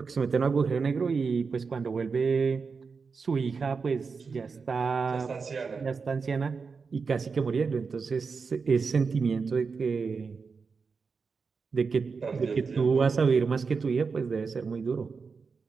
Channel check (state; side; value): quieter; left; 5.1 dB